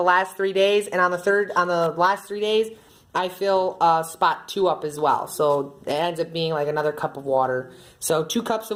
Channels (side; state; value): both; identical; correlation 1.00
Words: last 3 days, and on the last 3 days, I fill spot 2 up as well. So it ends up being like another cup of water. So 2 cups